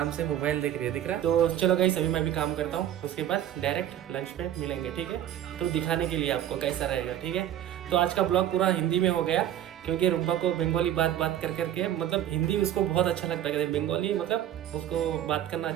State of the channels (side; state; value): left; quieter; 11.5 dB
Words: से मोबाइल देख रही है, दिख रहा है। तो चलो गाइस अभी मैं भी काम करता हूँ, उसके बाद डायरेक्ट लंच पे मिलेंगे, ठीक है। तो दिखाने के लिए आपको कैसा रहेगा, ठीक है। तो आज का ब्लॉग पूरा हिंदी में हो गया, क्योंकि रुम्बा को बंगाली बात कर करके, मतलब हिंदी उसको बहुत अच्छा लगता है, बंगाली मतलब उसको बात करना